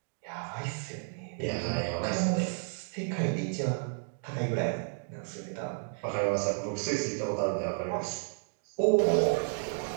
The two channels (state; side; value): silent; left; 56 dB below the other